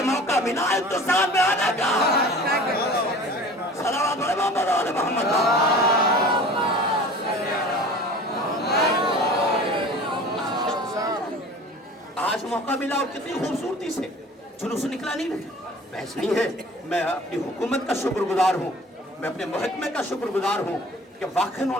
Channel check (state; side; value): normal; both; correlation 0.43